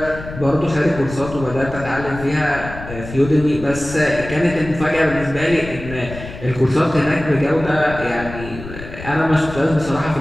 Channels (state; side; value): noise; left; rumble, 12 dB below the sound